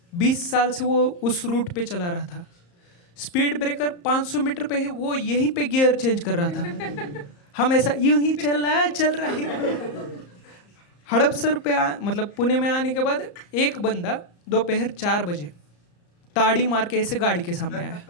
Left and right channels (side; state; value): right; late; 34 ms